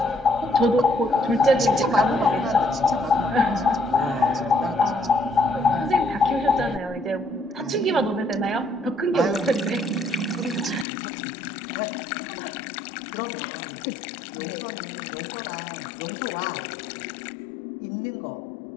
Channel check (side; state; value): right; drops out; at 10.9 s